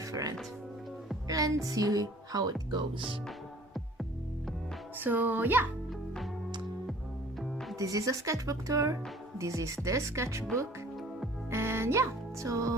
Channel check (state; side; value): normal; both; correlation 0.51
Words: Let's see how it goes. So yeah, this is a sketchbook tour. This is the sketchbook, and yeah, so